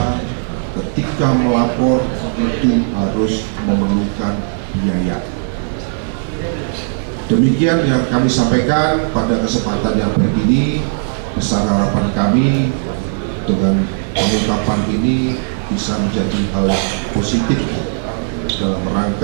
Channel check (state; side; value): silent; left; digital silence